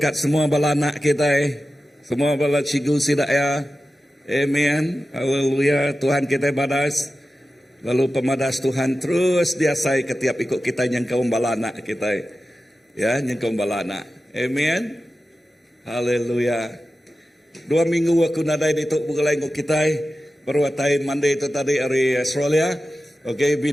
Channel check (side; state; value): both; normal; correlation 0.94